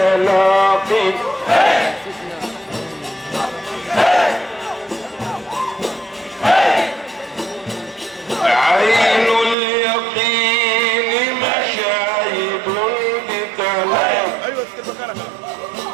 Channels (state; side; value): drops out; left; at 9.6 s